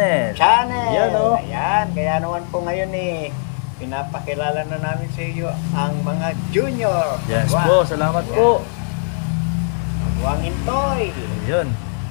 Yan oh. Ayan, kaya naman po ngayon pinapakilala na namin sa iyo ang mga junior. Yes po, salamat po. Kagwangin Toy. Yun.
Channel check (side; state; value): right; silent; 66 dB below the other